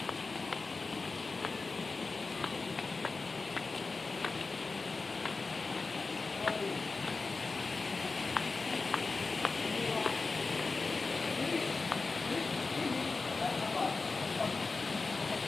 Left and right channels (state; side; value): quieter; right; 4.0 dB